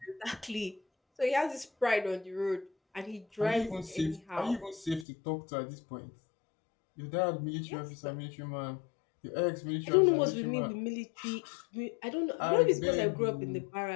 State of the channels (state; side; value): drops out; right; at 5.1 s